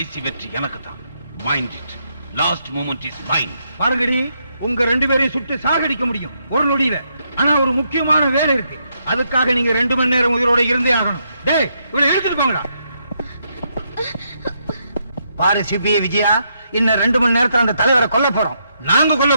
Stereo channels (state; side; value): inverted; both; correlation -0.78